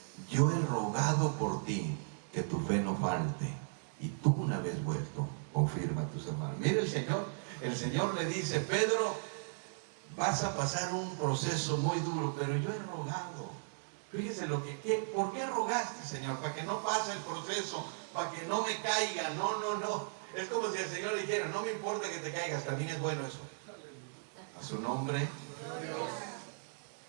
yo he rogado por ti que tu fe no falte, y tú, una vez vuelto, confirma a tus hermanos. Mire, el Señor le dice: Pedro, vas a pasar un proceso muy duro, pero yo he rogado. Fíjese ¿por qué rogaste, Señor? Para que no pase el proceso, para que no me caiga. No. Es como si el Señor le dijera: no me importa que te caigas, también es bueno eso. A su nombre.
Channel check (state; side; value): silent; left; digital silence